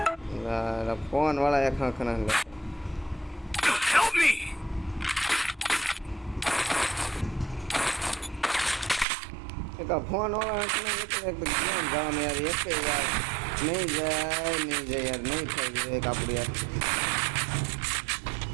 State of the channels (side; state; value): left; drops out; at 9.1 s